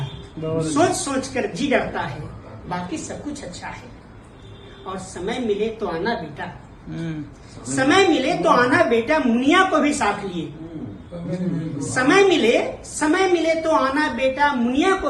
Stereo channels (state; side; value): identical; both; correlation 1.00